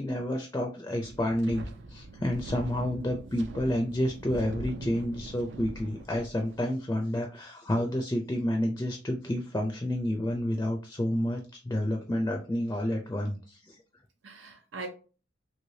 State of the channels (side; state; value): both; normal; correlation 0.88